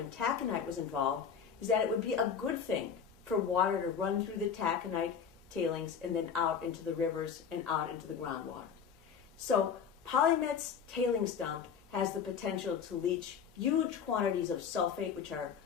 taconite was involved is that it would be a good thing for water to run through the taconite tailings and then out into the rivers and out into the groundwater. So Polymet's tailings dump has the potential to leach huge quantities of sulfate, which are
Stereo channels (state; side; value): quieter; right; 7.0 dB